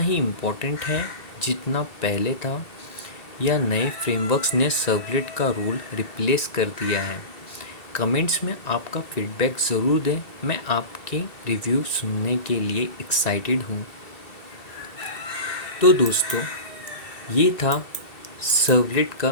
इम्पोर्टेंट है जितना पहले था, या नए फ्रेमवर्क्स ने सर्वलेट का रोल रिप्लेस कर दिया है? कमेंट्स में आपका फीडबैक ज़रूर दें। मैं आपके रिव्यू सुनने के लिए एक्साइटेड हूँ। तो दोस्तों, ये था सर्वलेट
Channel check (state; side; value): late; right; 2.7 ms